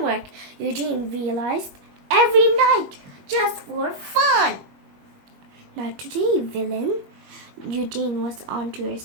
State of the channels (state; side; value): late; left; 21 ms